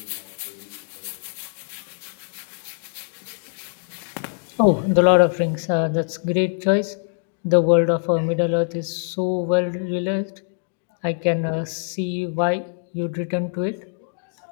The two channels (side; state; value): right; silent; 63 dB below the other